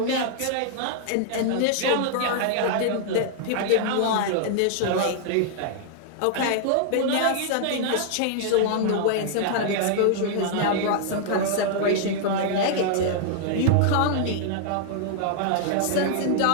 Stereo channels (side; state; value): both; different; correlation -0.01